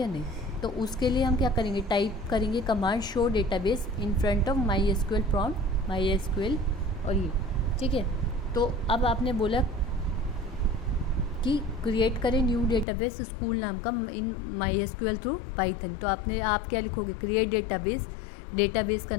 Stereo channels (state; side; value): drops out; right; at 12.9 s